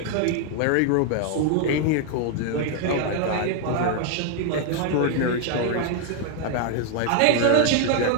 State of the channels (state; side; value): different; both; correlation 0.00